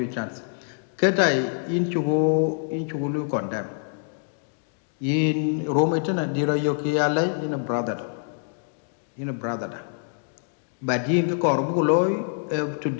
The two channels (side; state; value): right; silent; digital silence